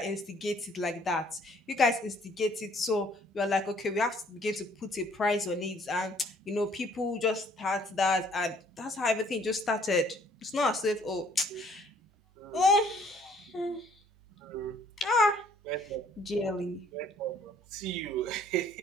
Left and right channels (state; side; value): normal; both; correlation 0.60